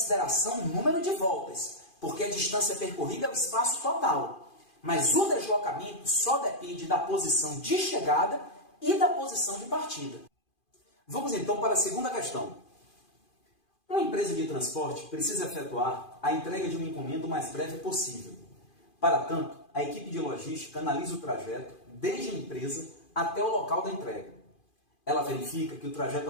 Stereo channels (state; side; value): late; right; 2.5 ms